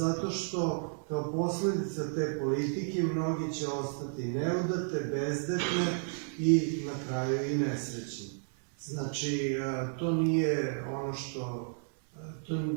što kao posledica te politike mnogi će ostati neudate, bezdetne i na kraju i nesrećni. Znači, to nije ono što...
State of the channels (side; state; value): left; silent; 56 dB below the other